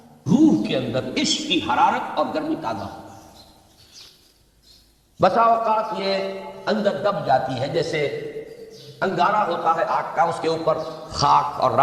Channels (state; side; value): identical; both; correlation 1.00